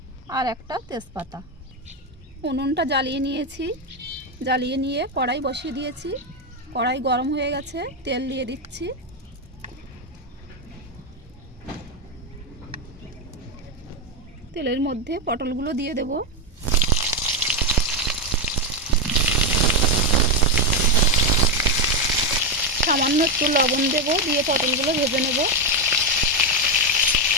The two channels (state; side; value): normal; both; correlation 0.08